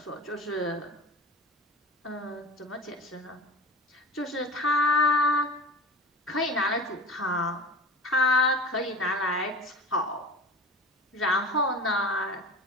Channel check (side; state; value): both; normal; correlation 0.35